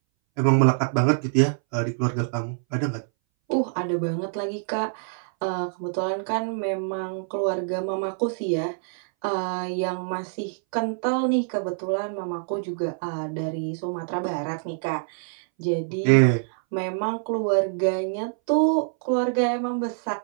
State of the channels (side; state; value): left; silent; 60 dB below the other